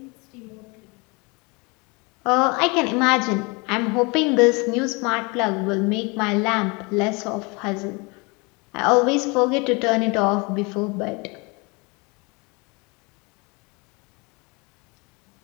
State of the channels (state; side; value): quieter; right; 28.6 dB